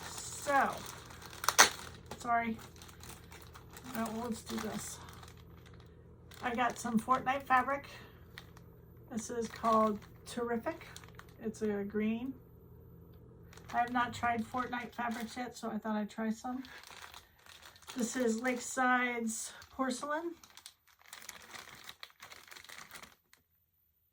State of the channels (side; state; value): both; identical; correlation 1.00